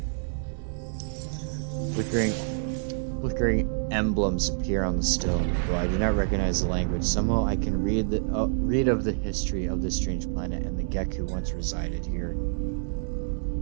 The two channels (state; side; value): silent; left; digital silence